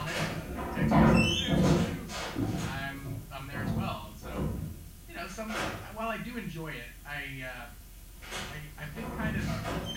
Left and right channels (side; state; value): both; identical; correlation 1.00